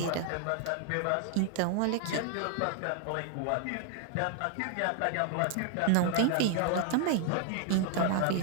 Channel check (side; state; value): both; different; correlation 0.00